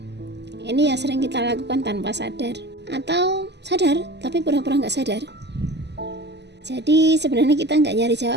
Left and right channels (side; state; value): left; late; 0.50 ms